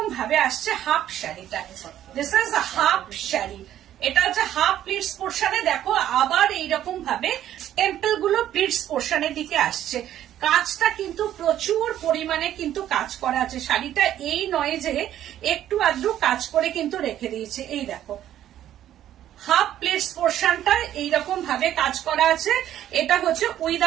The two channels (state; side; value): quieter; left; 11.7 dB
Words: ভাবে আসছে হাফ শাড়িটা, this is a half sari. এটা হচ্ছে হাফ প্লিটস পোর্শনে, দেখো আবার এইরকম ভাবে টেম্পল গুলো প্লিটস পোর্শনের দিকে আসছে। কাজটা কিন্তু প্রচুর পরিমাণে কিন্তু কাজ করা আছে, শাড়িটা এই নয় যে একটু আধটু কাজ করে কিন্তু রেখে দিয়েছে। এই দেখো হাফ প্লিটস পোর্শনটা এইরকম ভাবে কাজ করা আছে। এটা হচ্ছে